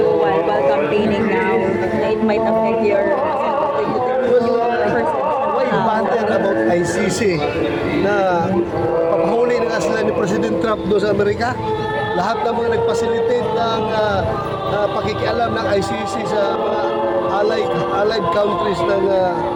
while campaigning now na it might affect your Why bother about ICC na papahuli na nga sila ni President Trump doon sa Amerika? Lahat ng mga nag-facilitate ng pakikialam ng ICC sa mga allied countries ng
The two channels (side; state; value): both; identical; correlation 1.00